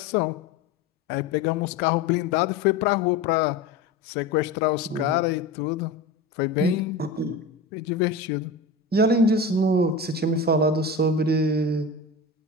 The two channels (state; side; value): quieter; right; 3.0 dB